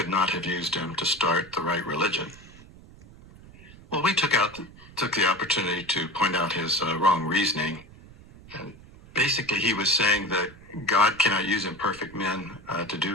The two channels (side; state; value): right; noise; rumble, 21 dB below the sound